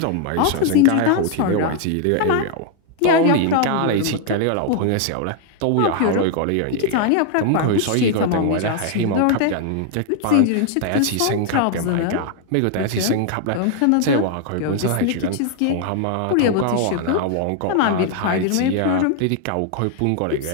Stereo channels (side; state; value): both; different; correlation 0.00